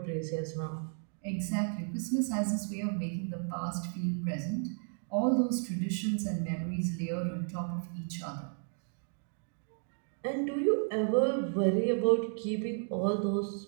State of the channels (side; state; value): left; silent; 56 dB below the other